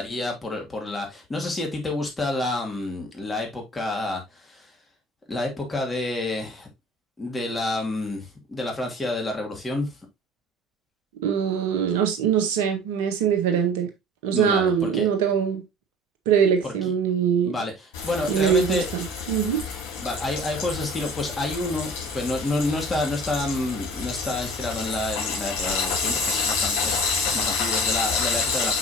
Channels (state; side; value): normal; both; correlation 0.44